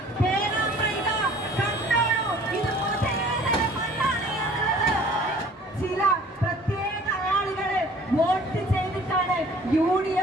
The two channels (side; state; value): both; normal; correlation 0.51